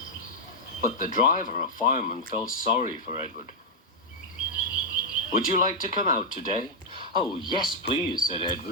But the driver and fireman felt sorry for Edward. "Would you like to come out today?" "Oh, yes, please," said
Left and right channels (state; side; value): normal; both; correlation -0.04